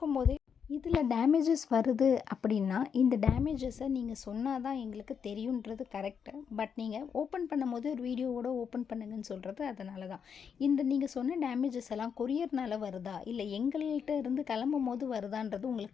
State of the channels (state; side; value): quieter; right; 7.0 dB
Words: இதில் டேமேஜஸ் வருது அப்படின்னா இந்த டேமேஜஸை நீங்கள் சொன்னால் தான் எங்களுக்கு தெரியுன்றது கரெக்டு. பட் நீங்கள் ஓப்பன் பண்ணும்போது ஒரு வீடியோவோட ஓப்பன் பண்ணுங்கன்னு சொல்கிறது அதனால தான். இந்த நீங்கள் சொன்ன டேமேஜஸ் எல்லாம் கொரியர்னால் வருதா இல்லை எங்கள்கிட்ட இருந்து கிளம்பும் போது வருதான்றது